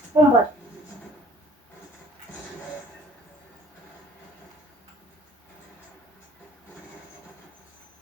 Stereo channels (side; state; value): both; normal; correlation 0.54